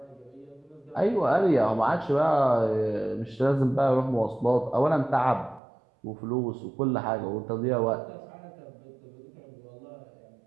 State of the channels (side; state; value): left; drops out; at 5.6 s